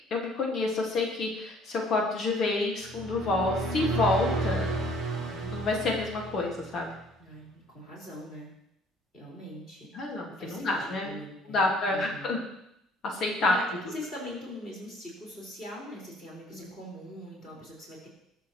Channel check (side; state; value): both; normal; correlation 0.58